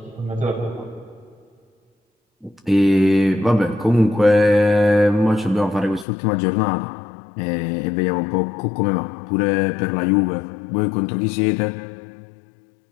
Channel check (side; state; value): right; drops out; at 6.1 s